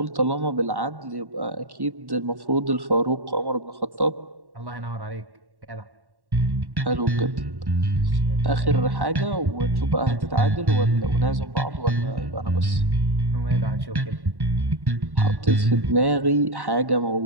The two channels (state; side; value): late; left; 1.1 ms